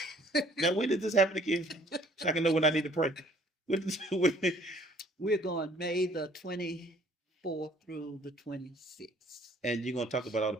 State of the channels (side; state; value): both; normal; correlation 0.58